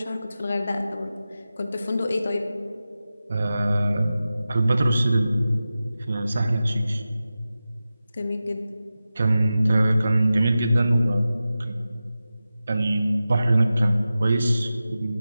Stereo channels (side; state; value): both; inverted; correlation -0.94